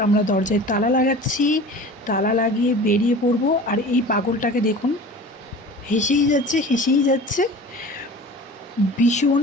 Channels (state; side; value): normal; both; correlation 0.39